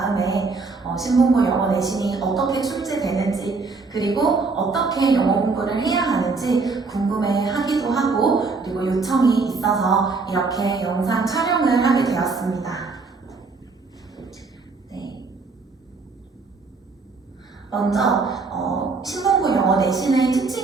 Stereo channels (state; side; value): quieter; left; 4.2 dB